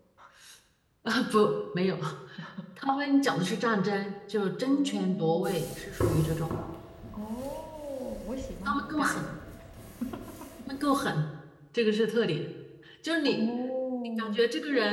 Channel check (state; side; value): identical; both; correlation 1.00